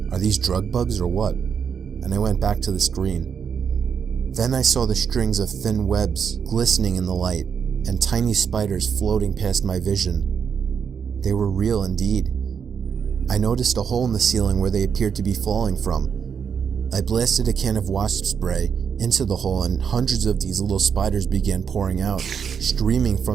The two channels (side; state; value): left; quieter; 7.0 dB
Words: Are these drug bugs or what? And I went back to the screen. Then I saw the strings of thin webs glistening in the light, and tiny spiders floating past my vision. They were real indeed. I noticed a hole in the ceiling where they appeared to be falling from. I blasted a can of wasp spray into the hole and hundreds of these little spiders began pouring out, streaming